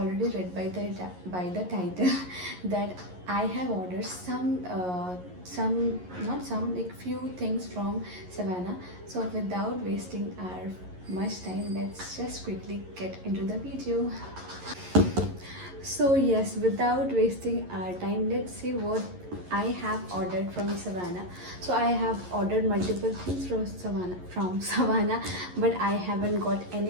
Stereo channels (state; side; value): late; left; 11 ms